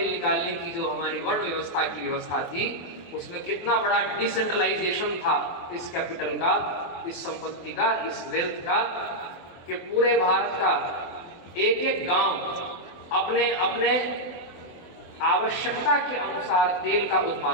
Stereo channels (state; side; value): late; right; 24 ms